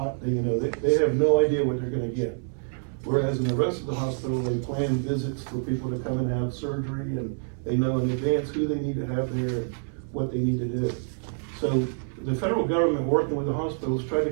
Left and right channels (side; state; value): left; silent; 60 dB below the other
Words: they have no idea what they're going to get. Whereas in the rest of the hospital, they plan visits for people to come and have surgery, and they know in advance who they need to have there and what they need to do. So the federal government, working with the hospitals, tried